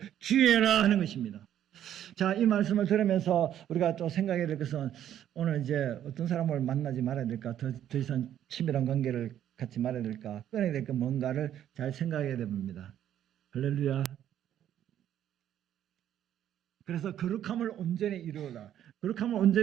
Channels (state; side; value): quieter; left; 10.8 dB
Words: 주의해라 하는 것입니다. 자, 이 말씀을 들으면서 우리가 또 생각해야 될 것은 오늘 이제 어떤 사람을 만나지 말아야 될까, 더 이상 친밀한 관계를 갖지 말아야 될까, 끊어야 될 까 뭔가를 잘 생각해야 됩니다. 할렐루야. 그래서 거룩함을 온전히 이루어라. 거룩함을